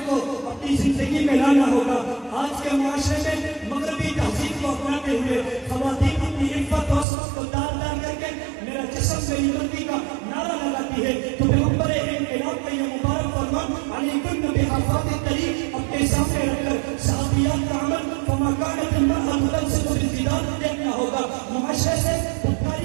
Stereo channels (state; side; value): drops out; left; at 7.1 s